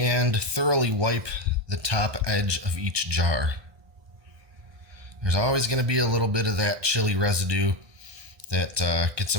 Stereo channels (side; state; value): left; late; 1.2 ms